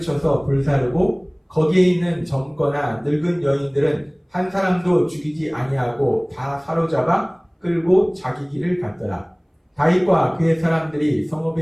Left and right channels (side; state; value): both; identical; correlation 1.00